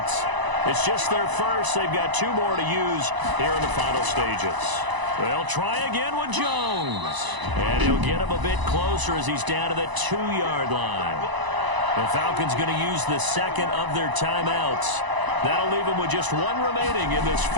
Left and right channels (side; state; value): left; late; 1.0 ms